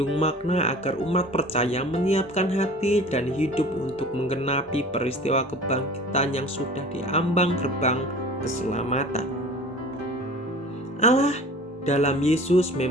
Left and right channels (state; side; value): normal; both; correlation 0.42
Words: makna agar umat percaya menyiapkan hati dan hidup untuk menggenapi peristiwa kebangkitan yang sudah diambang gerbang keselamatan. Allah dalam Yesus